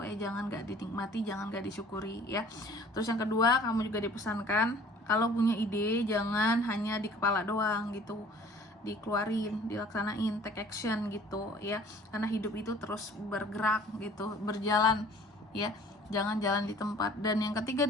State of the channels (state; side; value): normal; both; correlation 0.51